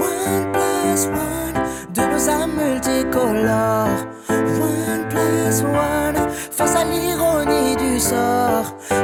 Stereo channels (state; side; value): identical; both; correlation 1.00